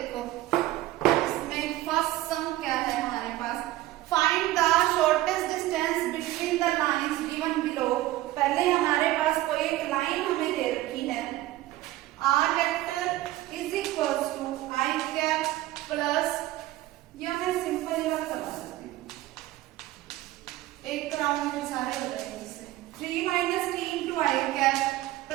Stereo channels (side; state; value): left; quieter; 16.1 dB